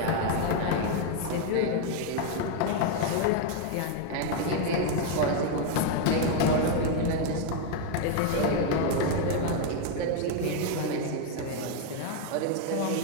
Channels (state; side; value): different; both; correlation 0.01